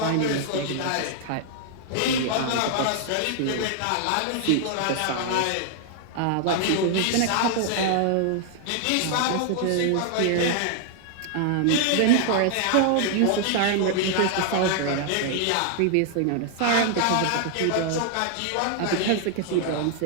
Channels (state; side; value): different; both; correlation 0.00